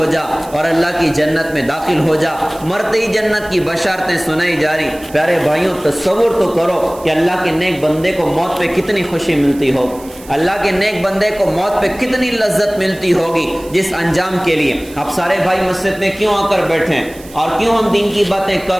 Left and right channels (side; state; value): right; noise; hiss, 21 dB below the sound